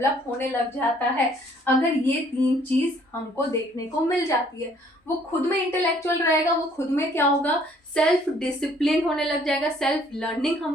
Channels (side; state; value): both; normal; correlation 0.61